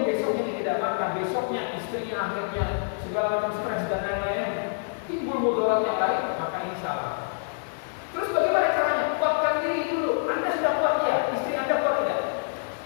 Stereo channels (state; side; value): silent; right; digital silence